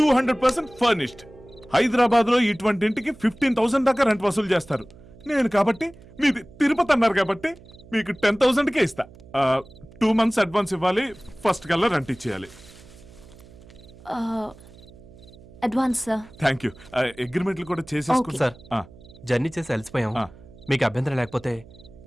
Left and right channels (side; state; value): right; noise; hum, 22 dB below the sound